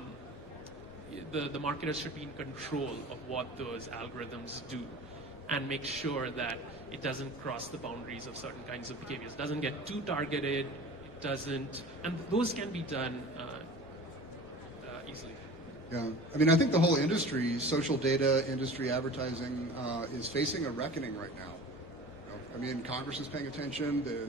the marketers should be in control of what those algorithms do, and make sure that it doesn't cross the boundaries of certain kinds of behaviors. It doesn't get too targeted. It doesn't, and those can be done easily. Yeah, I mean, I think the whole industry, social data industry, advertising, is facing a reckoning right now. I mean, Congress is paying attention. The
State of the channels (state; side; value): normal; both; correlation 0.40